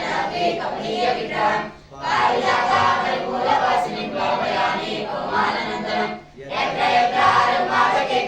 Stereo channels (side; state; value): both; identical; correlation 1.00